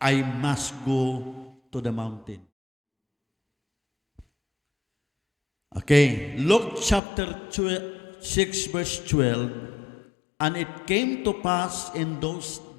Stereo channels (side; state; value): right; drops out; at 7.0 s